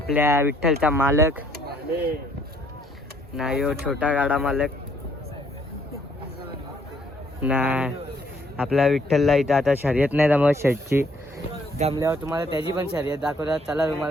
विठ्ठलचा मालक ना. यो छोटा गाडा मालक ना. आपल्या विठ्ठलला इथं आता शर्यत नाही जमत शेटची. जमल्यावर तुम्हाला त्याची पण शर्यत दाखवतात. चला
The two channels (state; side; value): normal; both; correlation 0.66